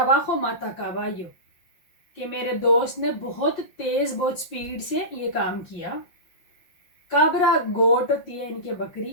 mata caballo, कि मेरे दोस्त ने बहुत तेज, बहुत स्पीड से ये काम किया। काबरा, गोट होती है, इनके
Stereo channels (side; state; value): right; late; 5.6 ms